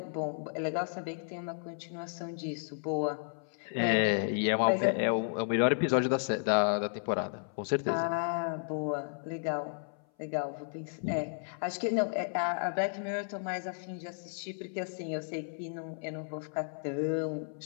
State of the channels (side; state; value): right; silent; 56 dB below the other